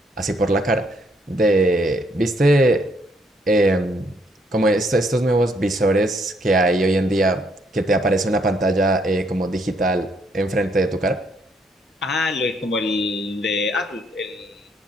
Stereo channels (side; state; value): both; normal; correlation 0.70